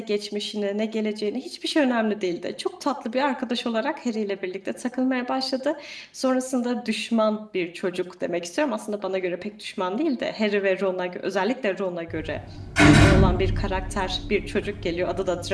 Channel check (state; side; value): identical; both; correlation 1.00